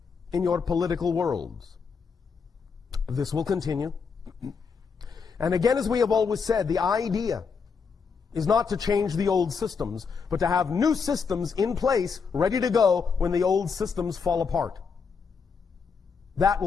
in your political worlds. This will continue. And again, as we have always said, the idea is not to change the old systems, but to have new systems in place, ready to go when the old systems fall apart. That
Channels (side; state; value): right; quieter; 5.7 dB